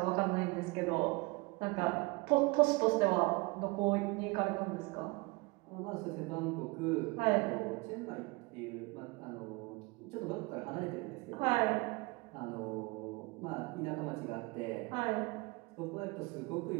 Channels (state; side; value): quieter; left; 25.5 dB